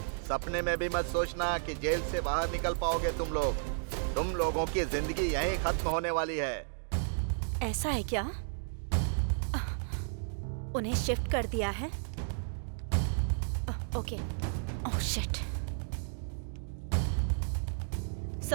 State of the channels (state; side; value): silent; left; digital silence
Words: सपने में भी मत सोचना कि जेल से बाहर निकल पाओगे तुम लोग। तुम लोगों की जिंदगी यहीं खत्म होने वाली है। ऐसा है क्या? उन्हें शिफ्ट कर दिया है? Okay. Oh shit.